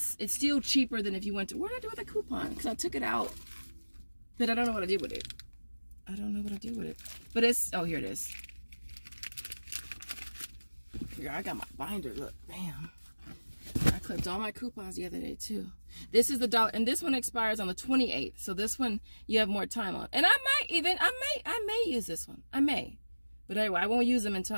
it's still cheaper than if you went to, what did I do with the coupon? Because I took it out, but I don't know what I did with it. I don't know what I did with it. But it's, oh, here it is. Here, I got my binder, look, bam. I clipped all my coupons the other day too. This is the $1, and this one expires on the 28th. So this one you have more time on. And I may use this one. I may. But anyway, I won't use them until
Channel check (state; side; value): inverted; both; correlation -1.00